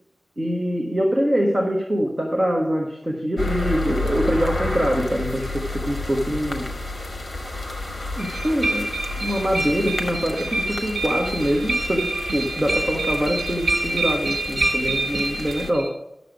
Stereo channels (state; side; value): normal; both; correlation 0.92